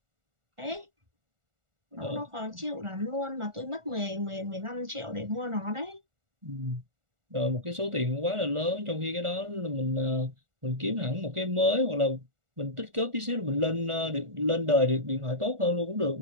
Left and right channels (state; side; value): late; left; 1.4 ms